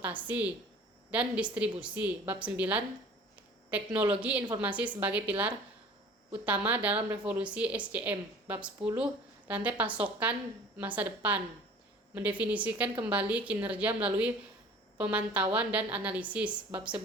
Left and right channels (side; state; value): both; normal; correlation 0.46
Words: dan distribusi. Bab 9, teknologi informasi sebagai pilar utama dalam revolusi SCM. Bab 10, rantai pasokan masa depan, mendefinisikan kembali kinerja melalui pemantauan dan analisis. Bab